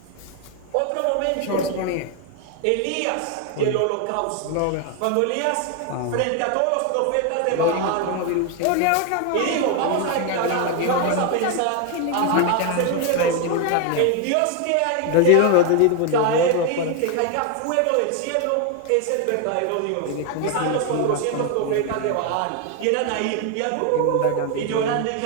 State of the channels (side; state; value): both; different; correlation 0.01